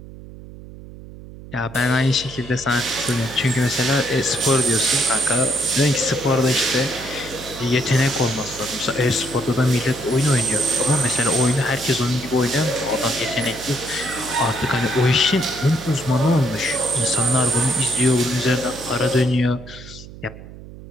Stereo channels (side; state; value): right; noise; hum, 16 dB below the sound